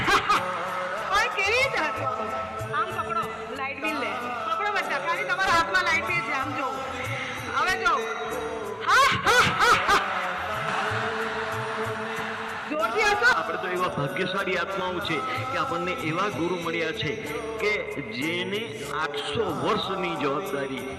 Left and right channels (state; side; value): identical; both; correlation 1.00